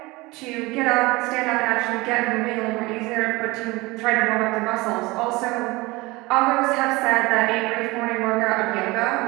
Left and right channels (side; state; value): left; quieter; 22.4 dB